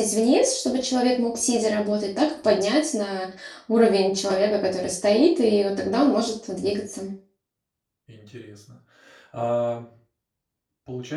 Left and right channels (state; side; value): identical; both; correlation 1.00